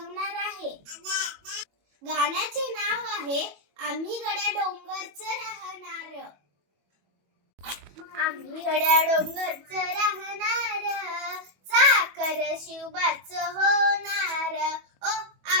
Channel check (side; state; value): left; late; 22 ms